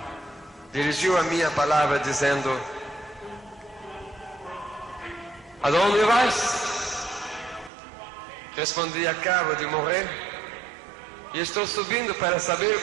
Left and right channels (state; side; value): drops out; left; at 7.7 s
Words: dirigiu a minha palavra dizendo: aonde vais? Respondi: acabo de morrer e estou subindo para saber